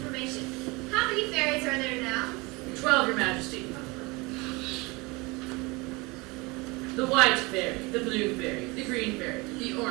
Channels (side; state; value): left; quieter; 25.4 dB